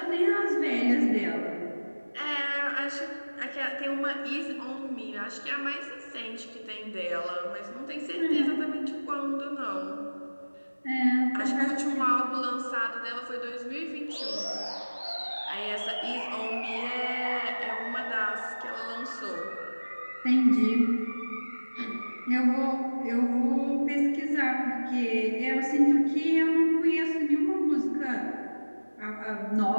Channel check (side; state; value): both; inverted; correlation -1.00